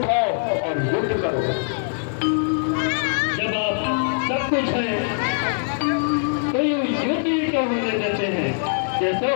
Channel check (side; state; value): right; silent; digital silence